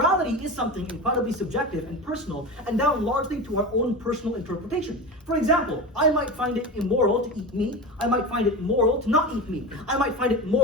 is something incredibly subjective and personal, and down largely to our own personal interpretation. For example, I might find it immoral to eat meat. I might find it moral to not eat meat. I might find it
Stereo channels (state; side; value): normal; both; correlation 0.26